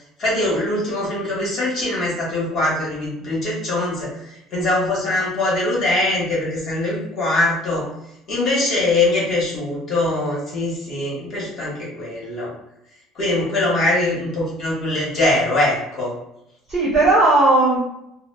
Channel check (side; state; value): both; normal; correlation 0.51